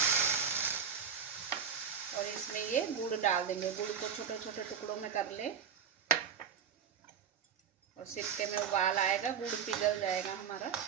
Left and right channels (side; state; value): left; quieter; 7.3 dB